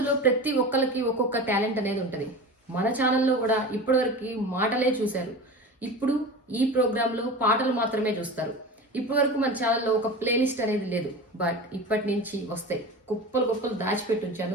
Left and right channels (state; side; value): normal; both; correlation 0.31